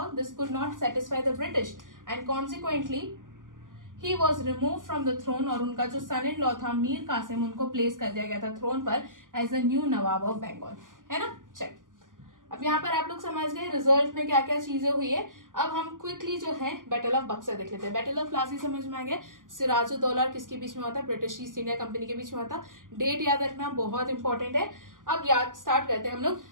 this could not satisfy the British and consequently he was remove from the throne, और उनका जो सन इन लॉ था मीर कासिम, उनको प्लेस कर दिया गया था थ्रोन पर as a new nawab of Bengal. है ना, चल अब यहाँ पर आप लोग समझ गए रिजल्ट में क्या क्या चीजें हुई है। अब हम क्विकली जो है बैटल ऑफ बक्सर देख लेते हैं। बैटल ऑफ प्लासी समझ में आ गया, सिराजुद्दौला और किसके बीच में हुआ था, ब्रिटिश ईस्ट इंडिया कंपनी के बीच में हुआ था। डेट याद रखना बहुत इंपॉर्टेंट है। अब याद स्टार्ट करते हैं हम लोग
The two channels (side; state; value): left; late; 0.89 ms